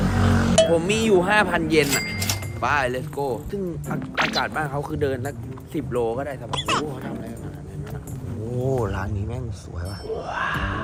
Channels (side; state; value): both; identical; correlation 1.00